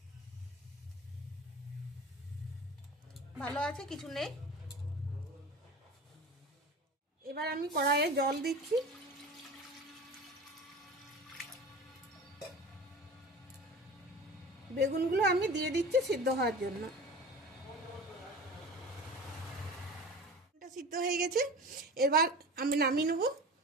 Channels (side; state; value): both; normal; correlation 0.35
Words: ভালো আছে, কিছু নেই। এবার আমি কড়াইয়ে জল দিচ্ছি। বেগুনগুলো আমি দিয়ে দিচ্ছি সিদ্ধ হওয়ার জন্য। এটা সিদ্ধ হয়ে গেছে, এবার আমি নামিয়ে নেব।